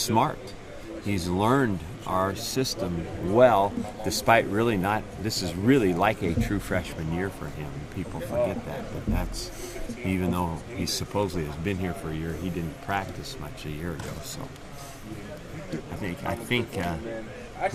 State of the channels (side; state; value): both; identical; correlation 1.00